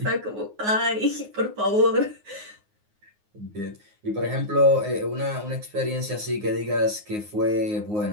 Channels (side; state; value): left; late; 9.6 ms